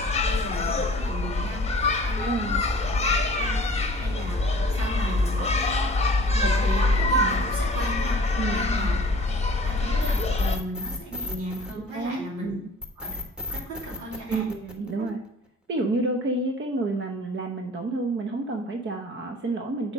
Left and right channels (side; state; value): both; normal; correlation 0.48